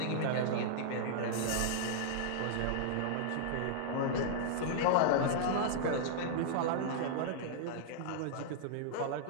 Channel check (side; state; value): both; different; correlation -0.01